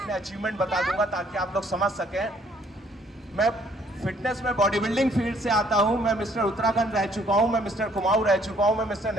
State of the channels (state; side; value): normal; both; correlation 0.63